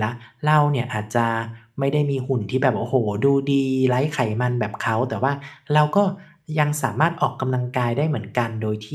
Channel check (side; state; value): both; identical; correlation 1.00